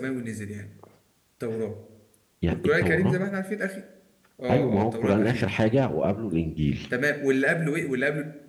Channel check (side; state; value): both; identical; correlation 1.00